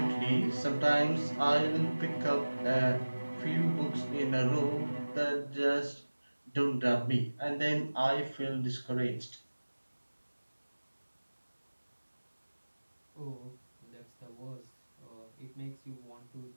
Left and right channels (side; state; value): both; inverted; correlation -1.00